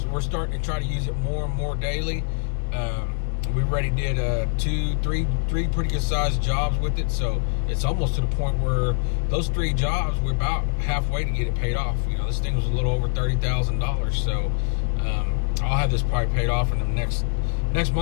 starting to try to use it more and more daily. We already did three pretty good sized jobs with it, so it's almost to the point where those 3 jobs, we're about halfway to get it paid off. You know, this thing was a little over $30,000, so I'll have this probably paid off in the next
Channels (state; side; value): silent; right; digital silence